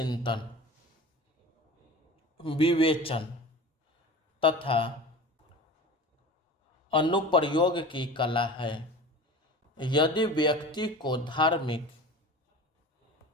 विवेचन तथा अनुप्रयोग की कला है। यदि व्यक्ति को धार्मिक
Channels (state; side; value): normal; both; correlation 0.36